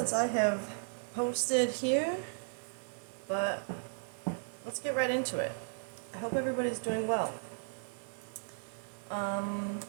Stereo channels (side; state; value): left; silent; 54 dB below the other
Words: I have posted here, but let's get right into it. I hope everybody's doing well.